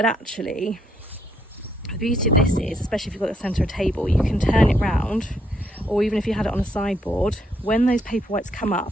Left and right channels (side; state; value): both; normal; correlation 0.73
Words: actually the beauty of this is, especially if you've got the centre of a table, you can turn it round, or even if you had it on a sideboard, when those Paperwhites come